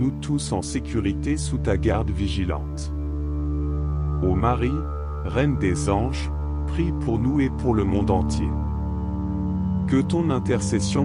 tous en sécurité sous ta garde vigilante. Ô Marie, Reine des anges, prie pour nous et pour le monde entier. Que ton intercession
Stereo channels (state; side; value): identical; both; correlation 1.00